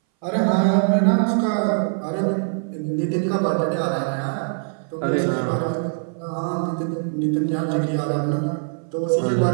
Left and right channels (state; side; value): silent; left; 61 dB below the other